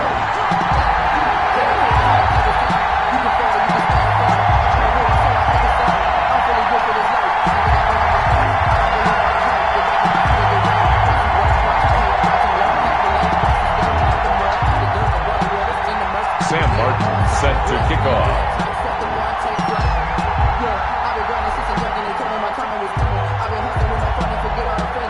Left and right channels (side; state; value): both; identical; correlation 1.00